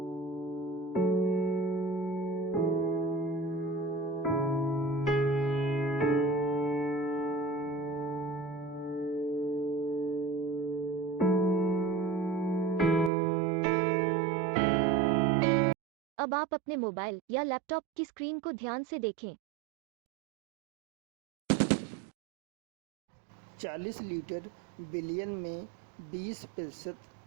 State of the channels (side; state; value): left; drops out; at 13.1 s